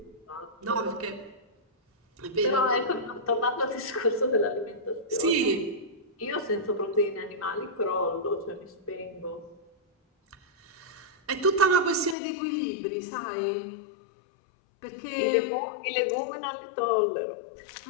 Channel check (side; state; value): right; drops out; at 12.2 s